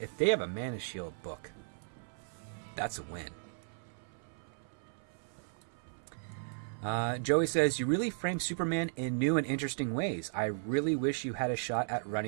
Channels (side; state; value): left; silent; 54 dB below the other